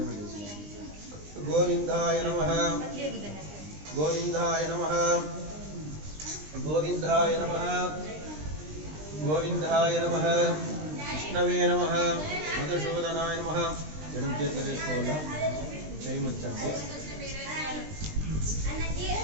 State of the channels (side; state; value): left; late; 20 ms